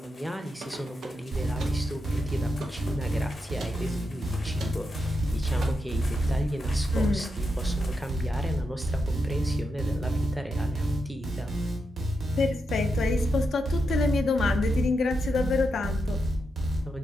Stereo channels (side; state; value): both; normal; correlation 0.85